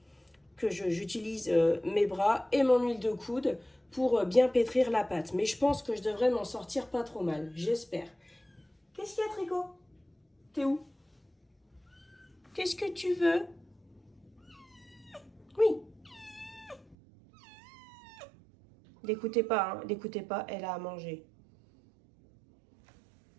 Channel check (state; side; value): drops out; left; at 16.9 s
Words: j'utilise mes bras et mon huile de coude pour bien pétrir la pâte. Mais je pense que je devrais m'en sortir pas trop mal. J'espère. Qu'est-ce qu'il y a, Tricot? T'es où? Qu'est-ce que tu veux? Oui. L'écoutez pas, hein. L'écoutez pas, elle a à manger.